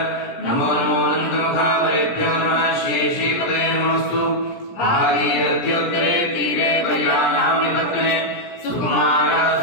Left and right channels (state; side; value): late; right; 17 ms